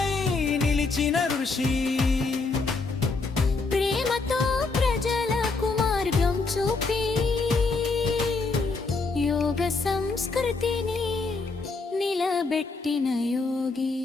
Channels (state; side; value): quieter; right; 4.0 dB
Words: నిలిచిన ఋషి. ప్రేమతో ప్రజలకు మార్గం చూపి యోగ సంస్కృతిని నిలబెట్టిన యోగి.